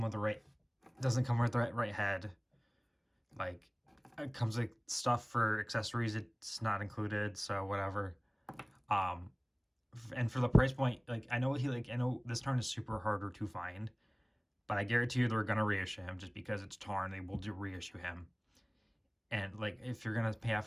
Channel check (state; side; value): identical; both; correlation 1.00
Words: with the right head. Like it comes with stuff for accessories. It's not included, so whatever. And for the price point, like I know this Tarn is super harder to find, but I guarantee you they're gonna reissue him just because it's Tarn. They will reissue him. And like if you're gonna pay